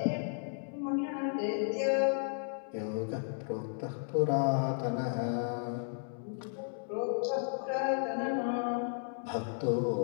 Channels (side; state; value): right; silent; digital silence